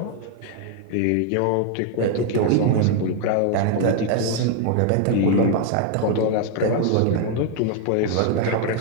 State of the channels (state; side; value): different; both; correlation 0.00